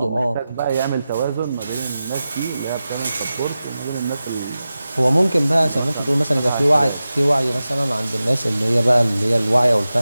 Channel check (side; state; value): both; inverted; correlation -0.94